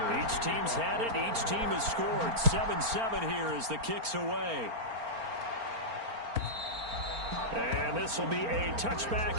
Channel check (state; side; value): late; left; 4.4 ms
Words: Each team's had it. Each team has scored. 7-7 here as the kick's away. And this will be a